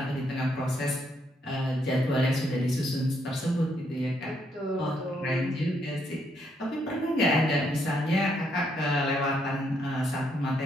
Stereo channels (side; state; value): both; normal; correlation 0.74